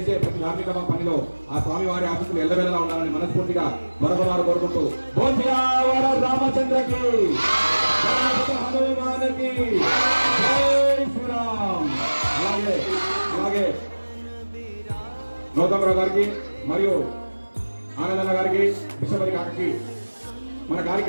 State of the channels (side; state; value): both; inverted; correlation -1.00